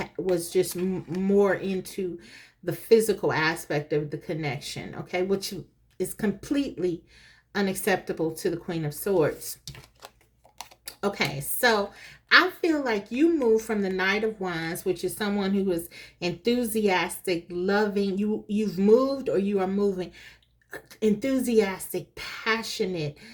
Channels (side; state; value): both; identical; correlation 1.00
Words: was just more into the physical aspect of the connection, okay, which is completely unacceptable to the Queen of Swords. Okay, so I feel like you move from the Knight of Wands, which is someone who is enthusiastic, loving. You've moved, or you are moving, enthusiastic, passionate,